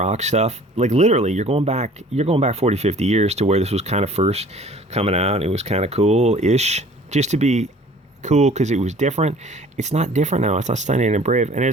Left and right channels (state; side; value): normal; both; correlation 0.50